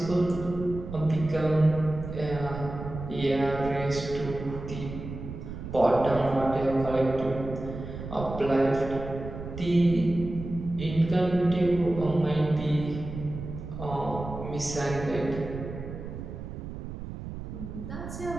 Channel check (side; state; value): right; noise; rumble, 9 dB below the sound